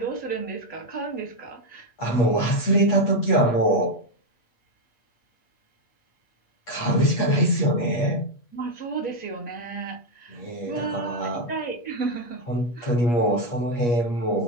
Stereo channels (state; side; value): late; right; 8.4 ms